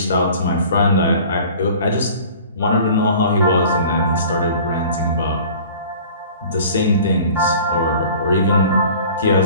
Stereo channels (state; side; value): inverted; both; correlation -0.46